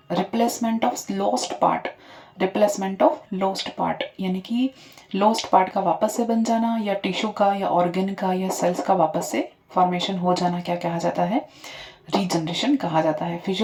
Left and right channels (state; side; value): identical; both; correlation 1.00